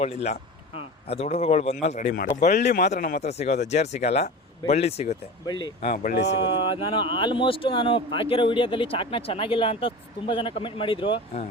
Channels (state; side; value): normal; both; correlation 0.31